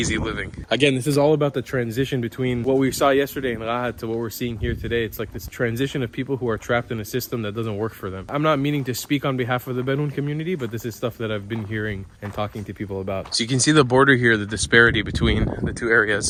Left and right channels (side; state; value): both; identical; correlation 1.00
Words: living. Again, this is all about the transition between what we saw yesterday in Rahat to what we're seeing here today. It's like this transition of people who are trapped in a system that doesn't work for them. I'm not meaning to speak on behalf of the Bedouin community, but this is stuff that I've been hearing and talking to people about. So you can see the border here, the disparity between the two